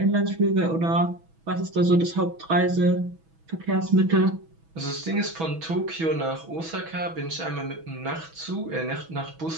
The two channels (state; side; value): late; left; 6.1 ms